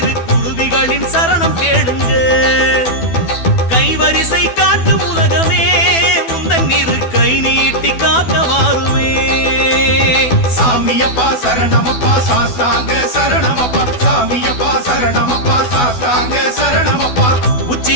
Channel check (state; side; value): late; right; 12 ms